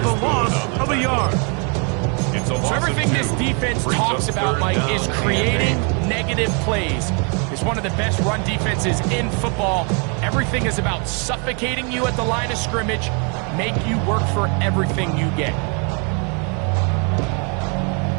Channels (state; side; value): quieter; left; 36.7 dB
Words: the loss of a yard. So everything this defense talks about, Mike, is creating negative plays. It's one of the best run defenses in football. Everything is about suffocating you at the line of scrimmage, make you work for everything you get.